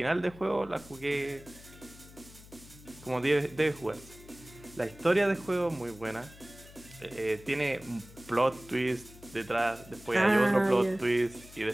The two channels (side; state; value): left; noise; hum, 20 dB below the sound